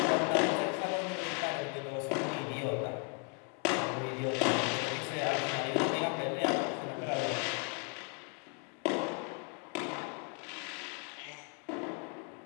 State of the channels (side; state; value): right; quieter; 34.5 dB